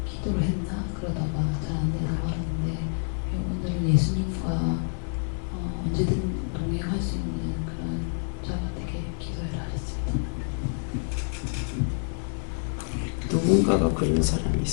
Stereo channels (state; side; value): silent; right; 60 dB below the other